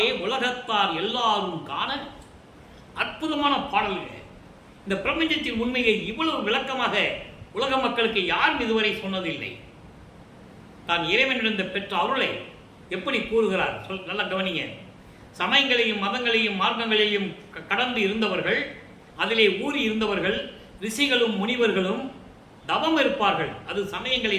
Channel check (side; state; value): both; identical; correlation 1.00